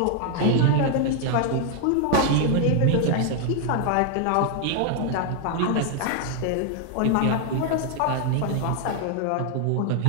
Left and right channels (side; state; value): both; different; correlation 0.00